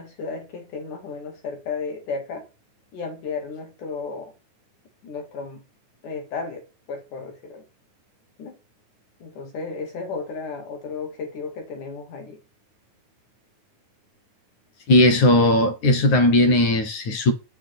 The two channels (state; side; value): late; right; 9.6 ms